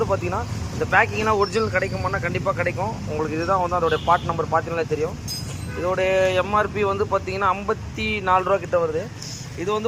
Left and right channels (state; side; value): identical; both; correlation 1.00